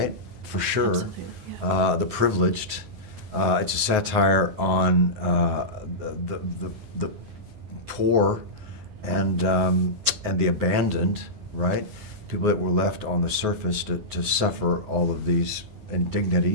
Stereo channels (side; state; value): left; late; 9.5 ms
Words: For sure. Absolutely, yeah. The privileged. It's a satire on the poor and the abandoned, right? People that were left on the surface to suffer all of these